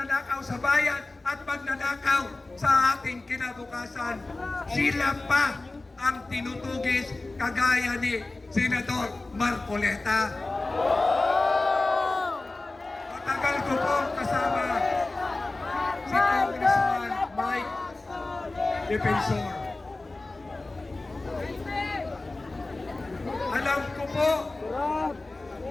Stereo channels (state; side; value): quieter; right; 3.1 dB